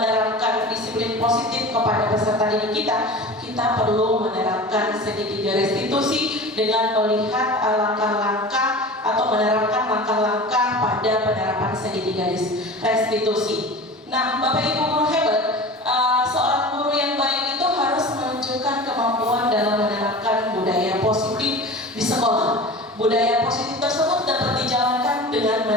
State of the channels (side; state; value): both; normal; correlation 0.35